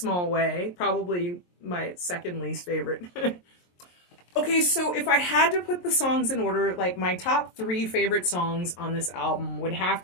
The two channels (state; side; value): late; right; 23 ms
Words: Way, probably my second least favorite. Okay, so if I had to put the songs in order, like my top three favorite songs on this album would have